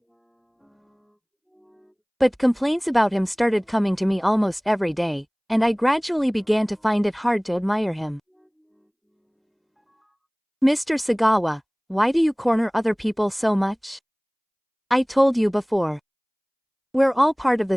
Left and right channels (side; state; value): both; identical; correlation 1.00